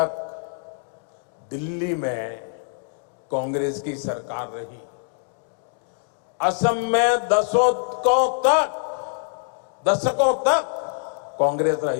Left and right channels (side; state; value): right; silent; digital silence